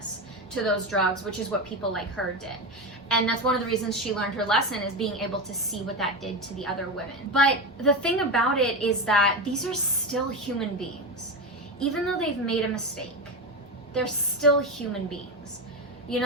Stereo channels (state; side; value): normal; both; correlation 0.18